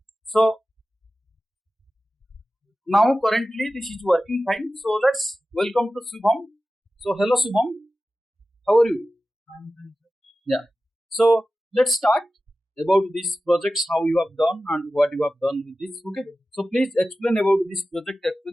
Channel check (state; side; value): normal; both; correlation 0.95